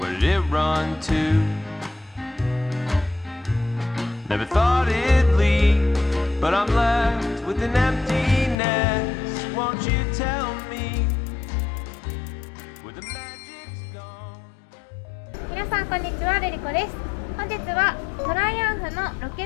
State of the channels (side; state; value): right; drops out; at 8.6 s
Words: did it run to? Never thought it'd leave, but I'm left with an emptiness. Won't you tell me where the magic's gone? 皆さんこんにちは、ルリコです。本日はトライアンフのロケ